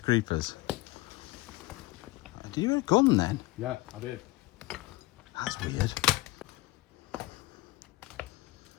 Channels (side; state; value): right; quieter; 20.0 dB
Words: Do you have a gun then? Yeah, I did. That's weird. Oh,